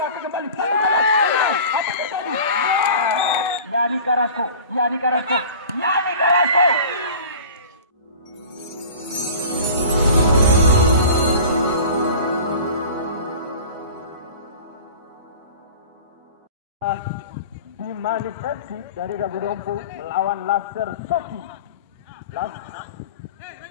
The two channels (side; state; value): both; inverted; correlation -0.40